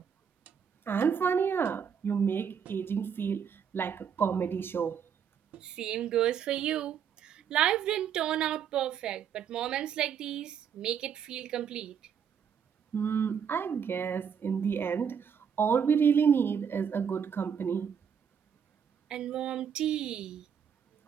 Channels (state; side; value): quieter; left; 7.6 dB